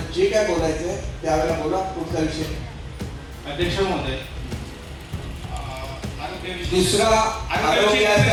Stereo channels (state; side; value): identical; both; correlation 1.00